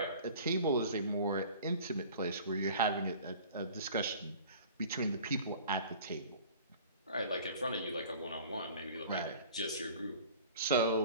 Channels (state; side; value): inverted; both; correlation -0.45